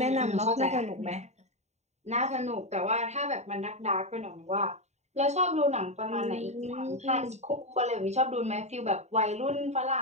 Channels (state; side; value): late; left; 0.32 ms